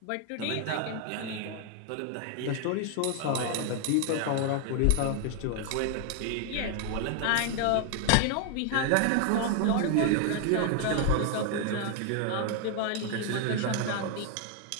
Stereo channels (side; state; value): both; different; correlation 0.00